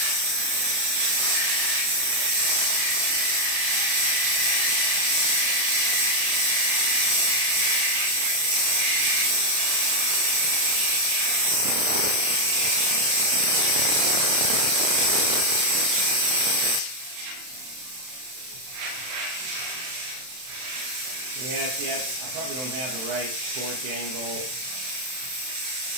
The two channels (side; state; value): left; late; 31 ms